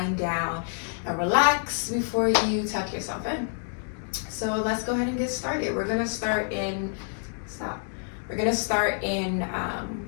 down and relax before you tuck yourself in. So let's go ahead and get started. We're gonna start in,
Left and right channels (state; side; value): silent; right; digital silence